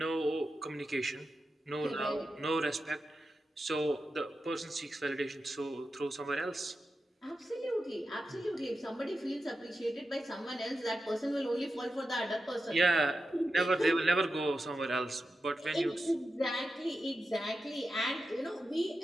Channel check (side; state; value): both; normal; correlation 0.90